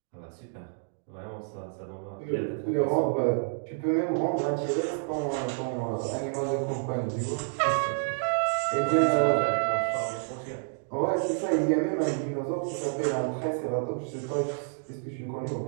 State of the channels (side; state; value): left; silent; digital silence